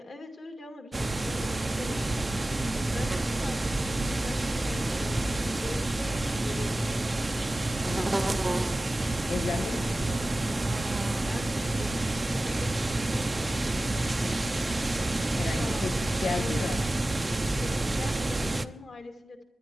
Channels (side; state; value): both; normal; correlation 0.96